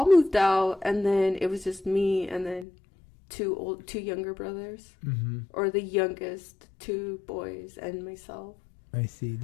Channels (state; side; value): drops out; right; at 2.7 s